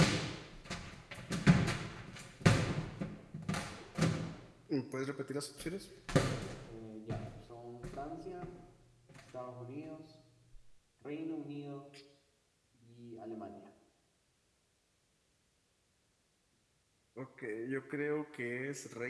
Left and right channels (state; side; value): identical; both; correlation 1.00